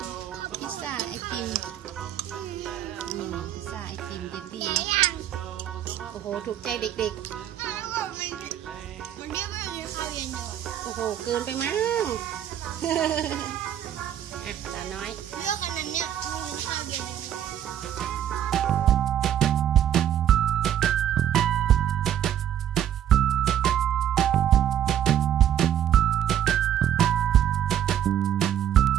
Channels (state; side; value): quieter; left; 10.6 dB